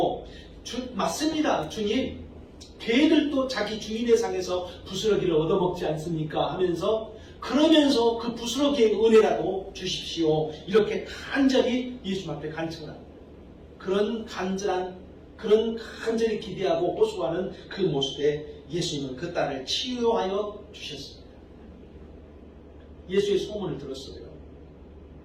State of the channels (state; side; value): identical; both; correlation 1.00